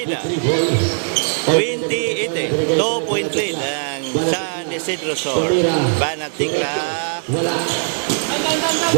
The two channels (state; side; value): silent; left; digital silence